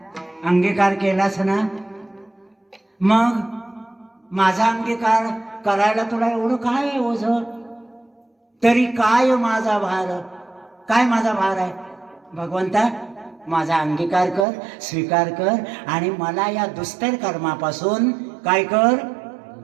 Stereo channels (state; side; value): drops out; left; at 14.5 s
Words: अंगीकार केलास ना. मग माझा अंगीकार करायला तुला एवढं काय आहे ओझ? तरी काय माझा भार, काय माझा भार आहे? भगवंता माझा अंगीकार कर, स्वीकार कर. आणि मला या दुस्तर कर्मापासून काय कर,